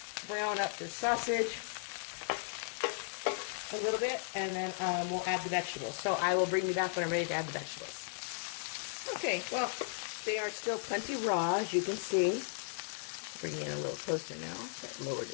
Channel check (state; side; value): silent; right; digital silence